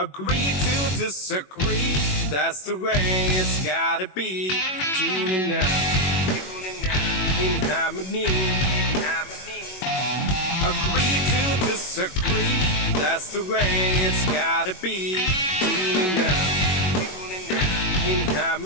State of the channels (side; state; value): right; late; 21 ms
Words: to disagree, that's the way it's gotta be. Tuning out in harmony. Agree to disagree, that's the way it's gotta be. Tuning out in